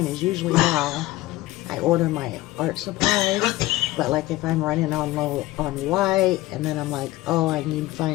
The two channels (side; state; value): right; quieter; 17.8 dB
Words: is usually how I order my art supplies. But like if I'm running on low on white, and then I'm like, oh, I need